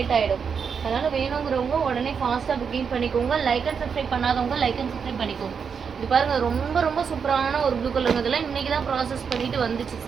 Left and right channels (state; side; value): quieter; left; 6.4 dB